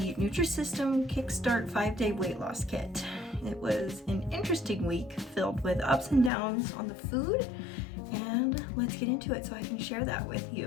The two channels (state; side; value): drops out; right; at 6.3 s